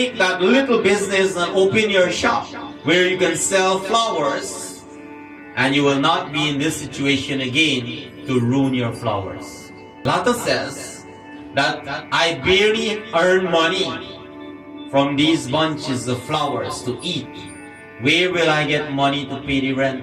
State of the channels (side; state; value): both; identical; correlation 1.00